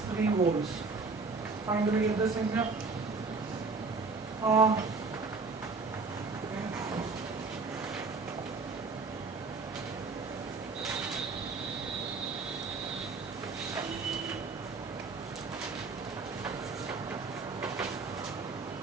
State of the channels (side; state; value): left; quieter; 4.2 dB